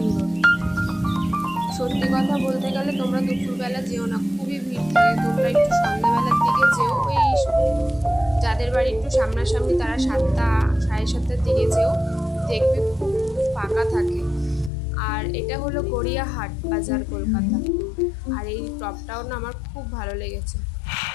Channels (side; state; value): right; drops out; at 14.7 s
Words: সত্যি কথা বলতে গেলে তোমরা দুপুরবেলা যেও না, খুবই ভিড় থাকে। তোমরা একটু সন্ধ্যাবেলার দিকে যেও, ওই যাদের বাড়ি একটু সামনাসামনি তারা 7টা 7:30টার দিকে যেও, দেখবে খুব ফাঁকা থাকে। আর এটা হলো গড়িয়াহাট বাজার কলকাতা। আর এই টপটাও না আমার খুব ভালো লেগেছে।